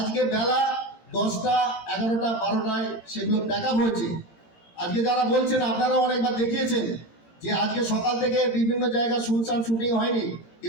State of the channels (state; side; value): late; right; 17 ms